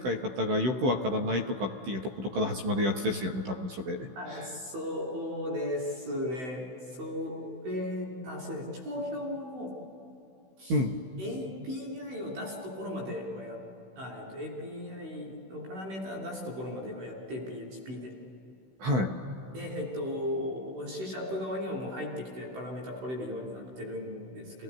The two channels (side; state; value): left; late; 16 ms